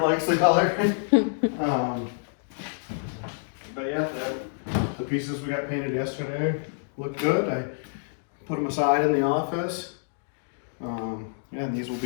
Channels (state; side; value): silent; right; digital silence